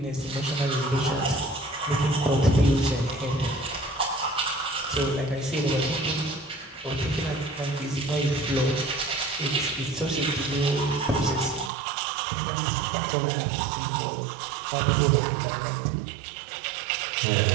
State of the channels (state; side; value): drops out; left; at 11.7 s